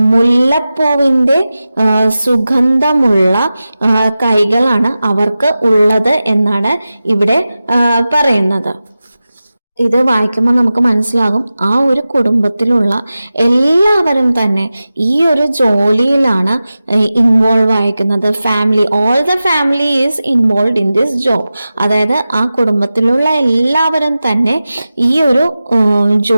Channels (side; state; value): both; inverted; correlation -0.95